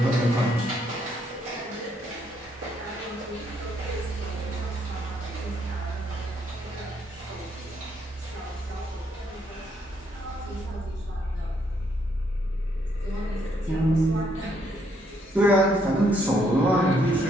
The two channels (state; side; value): normal; both; correlation 0.72